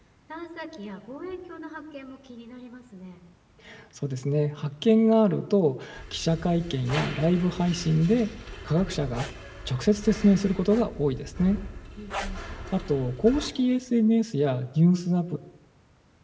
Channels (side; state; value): both; identical; correlation 1.00